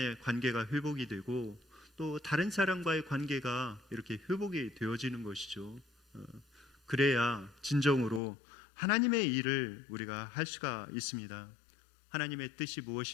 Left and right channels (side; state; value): right; drops out; at 8.2 s